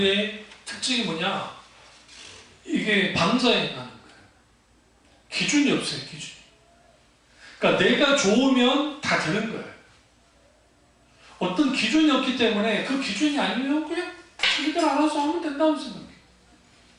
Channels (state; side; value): identical; both; correlation 1.00